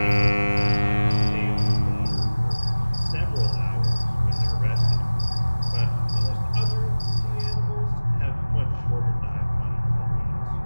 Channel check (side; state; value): both; inverted; correlation -1.00